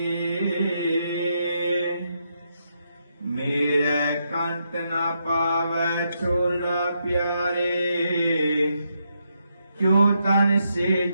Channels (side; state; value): both; inverted; correlation -0.79